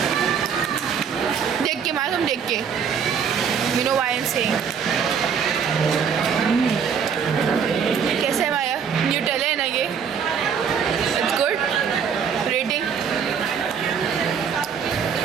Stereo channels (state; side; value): quieter; left; 7.0 dB